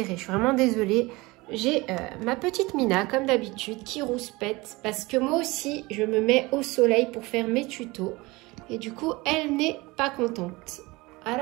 Je suis vraiment désolée. J'ai ma petite Mina, comme d'habitude, qui rouspète parce que moi aussi, je me mets au soleil pour faire mes tutos. Et du coup, elle n'est pas contente.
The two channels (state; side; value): quieter; left; 22.6 dB